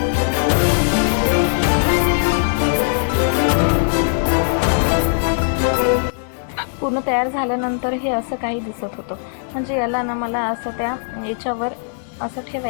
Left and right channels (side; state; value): right; silent; 66 dB below the other